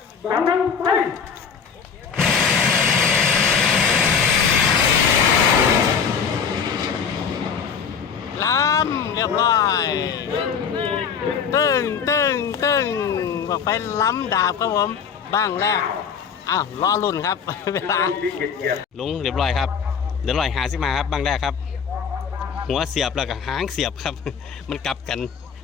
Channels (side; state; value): right; quieter; 6.7 dB